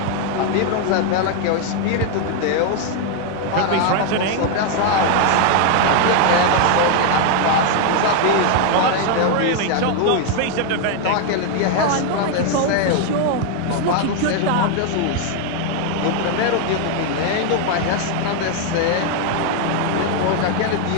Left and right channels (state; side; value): different; both; correlation 0.01